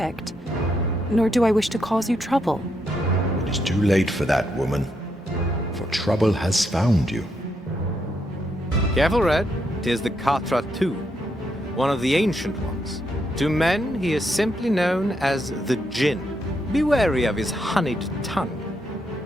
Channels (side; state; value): both; normal; correlation 0.79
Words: nor do I wish to cause you trouble. It is too late for that, woman, for trouble has found you. Careful, Red. 'Tis the Katra too, one of the ancient ones. To men, he is simply known as the Jinn. Be wary of his honeyed tongue.